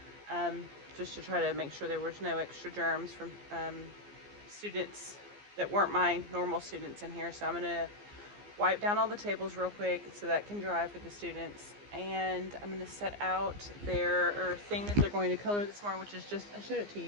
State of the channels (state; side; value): late; left; 15 ms